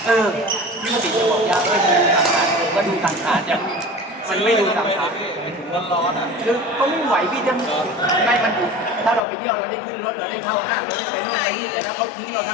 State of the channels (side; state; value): right; drops out; at 9.2 s